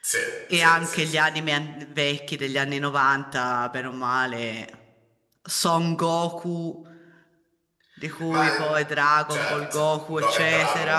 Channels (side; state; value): both; identical; correlation 1.00